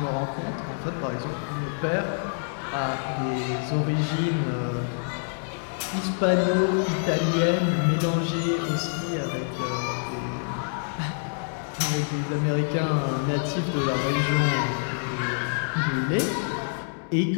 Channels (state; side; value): silent; right; digital silence